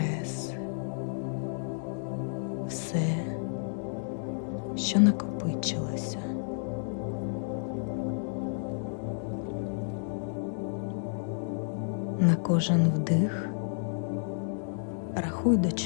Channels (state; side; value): silent; right; digital silence